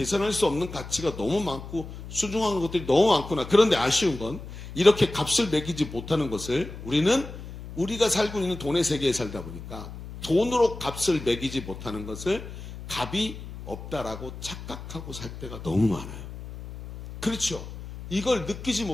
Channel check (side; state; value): left; noise; hum, 12 dB below the sound